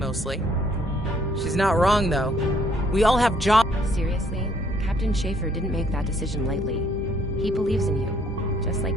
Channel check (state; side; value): normal; both; correlation 0.65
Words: She's not wrong, though. We all have jobs. Seriously, Captain Schaefer didn't make that decision lightly. He believes in you, just like